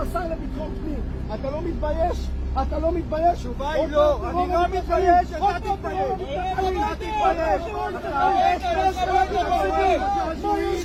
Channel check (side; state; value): both; identical; correlation 1.00